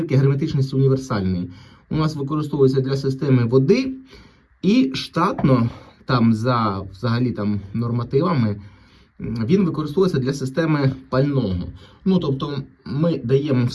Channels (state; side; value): identical; both; correlation 1.00